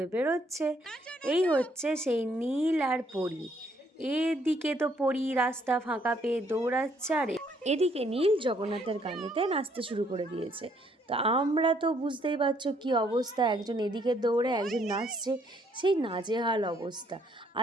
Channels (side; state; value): both; normal; correlation 0.68